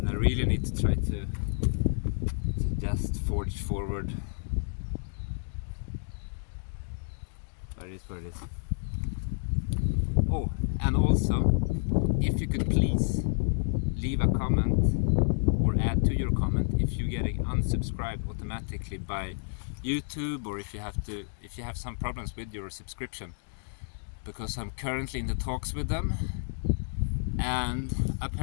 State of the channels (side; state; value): right; silent; digital silence